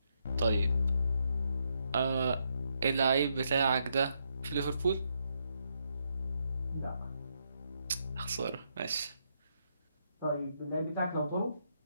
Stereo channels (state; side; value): inverted; both; correlation -0.78